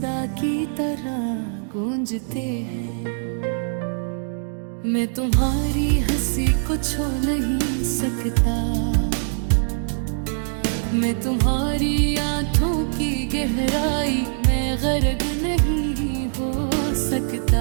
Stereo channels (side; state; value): left; silent; digital silence